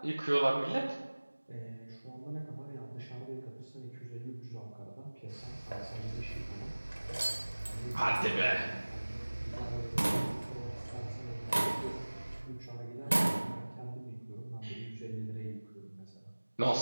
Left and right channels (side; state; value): both; inverted; correlation -1.00